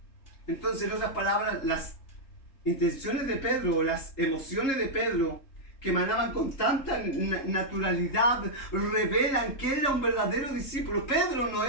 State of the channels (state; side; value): late; right; 3.7 ms